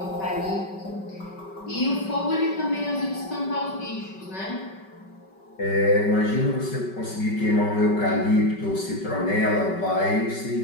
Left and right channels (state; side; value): late; right; 5.2 ms